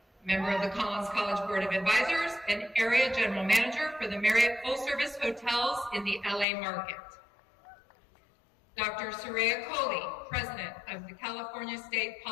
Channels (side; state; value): right; drops out; at 6.5 s